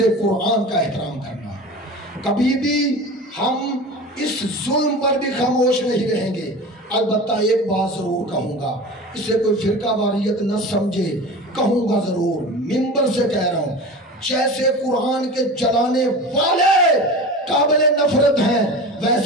قرآن کا احترام کرنا۔ کبھی بھی ہم اس ظلم پر بھی خاموش نہیں رہیں گے۔ البتہ ایک بات ضرور کہوں گا، اسے کوئی فرقہ واریت نہ سمجھے، کہوں گا ضرور، منبر سے کہہ رہا ہوں، جیسے قرآن کے جلانے والے قابل نفرت ہیں،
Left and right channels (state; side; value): normal; both; correlation 0.33